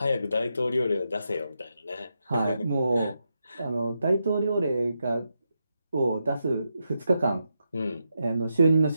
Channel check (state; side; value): inverted; both; correlation -0.85